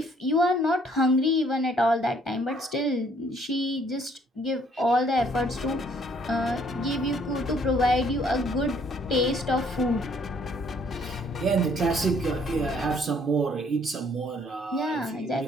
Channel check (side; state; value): both; normal; correlation 0.63